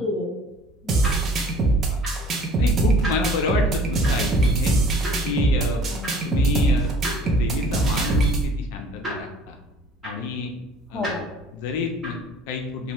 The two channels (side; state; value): both; normal; correlation 0.51